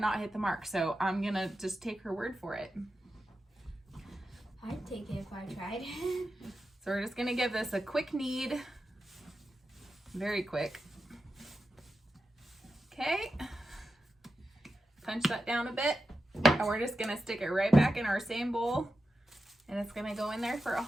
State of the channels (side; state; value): both; normal; correlation 0.90